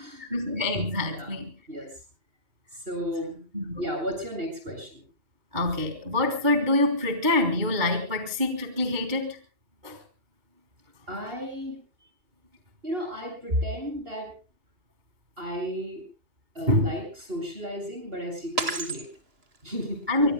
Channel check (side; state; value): left; late; 2.8 ms